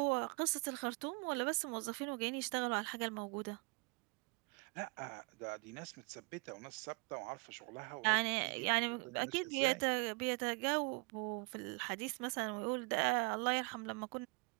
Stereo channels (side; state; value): left; quieter; 30.8 dB